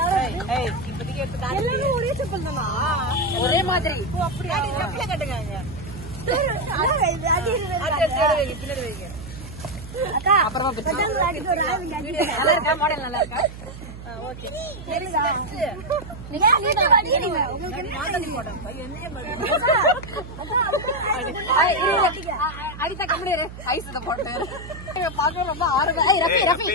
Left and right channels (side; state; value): right; noise; hum, 13 dB below the sound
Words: யாரு? ஏய் இப்போதைக்கு எடுத்து காட்டு. எல்லாரும் ஒரே செப்பல் தானா? ஒரே மாதிரி. ஓ அப்படியே. செப்பல கட்டுங்க. அது பின்னாடி வைங்க. அக்கா அப்புறமா பிச்சு. நல்லா இருக்கா? மாடல் நல்லா இருக்கா? ஓகே. சரிடா. நீங்க நீங்க உங்களுக்கு மாடல் போடுறேன். என்னைய மாதிரி. அடிச்சா கம்ப்ளீட் ஐஸ் இத போட்டு பாக்க ரொம்ப ஆர்வமா. ரஃபி